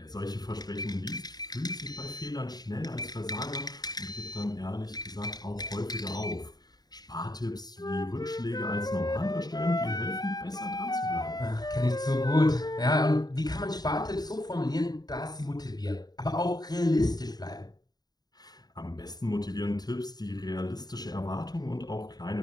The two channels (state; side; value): late; right; 0.19 ms